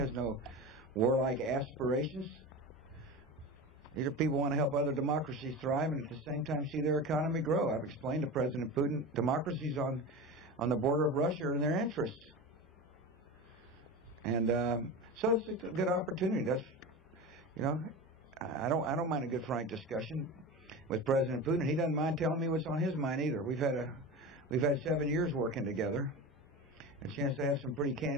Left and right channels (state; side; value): normal; both; correlation 0.27